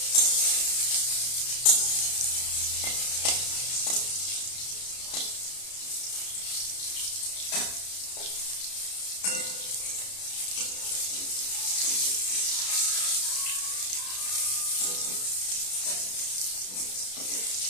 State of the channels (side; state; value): right; late; 33 ms